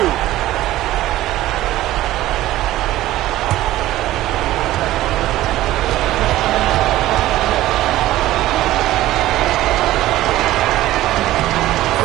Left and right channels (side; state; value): left; quieter; 15.3 dB